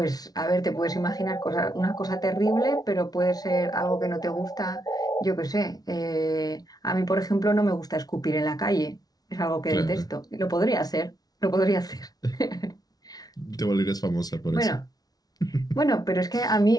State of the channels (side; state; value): right; late; 0.19 ms